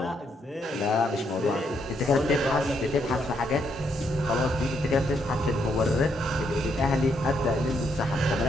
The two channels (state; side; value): normal; both; correlation 0.75